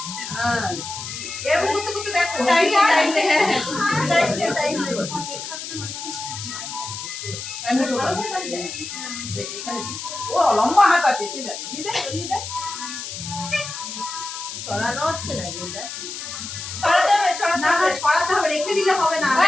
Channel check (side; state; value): left; noise; hiss, 8 dB below the sound